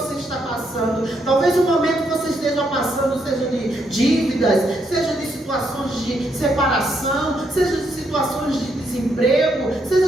está passando. Talvez o momento que você esteja passando seja de dívidas, seja de situações de separação, seja de situações de desemprego,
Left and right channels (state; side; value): normal; both; correlation 0.76